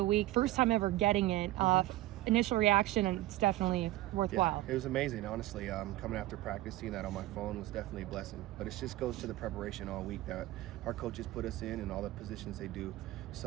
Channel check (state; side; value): quieter; left; 16.4 dB